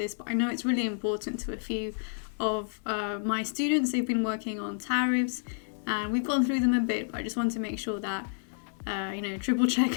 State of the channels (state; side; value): silent; right; 58 dB below the other